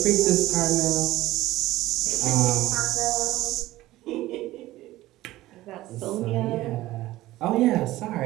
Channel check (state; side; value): quieter; left; 16.6 dB